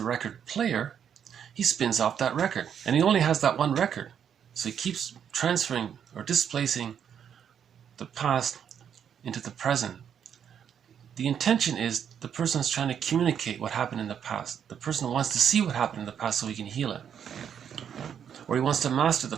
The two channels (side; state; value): left; quieter; 8.4 dB